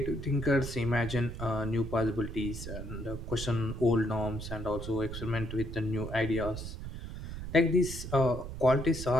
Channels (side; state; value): right; noise; rumble, 8 dB below the sound